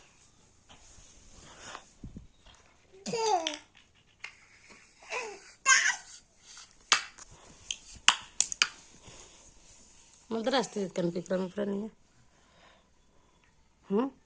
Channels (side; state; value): both; identical; correlation 1.00